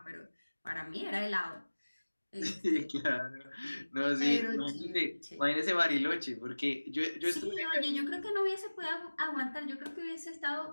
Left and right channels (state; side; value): inverted; both; correlation -1.00